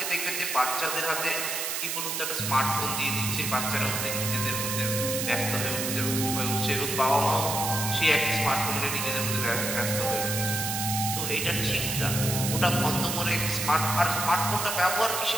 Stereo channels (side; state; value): right; noise; hiss, 2 dB below the sound